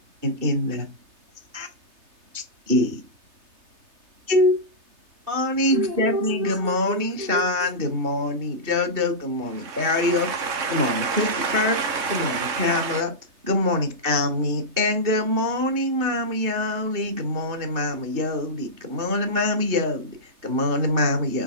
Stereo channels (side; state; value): left; late; 3.3 ms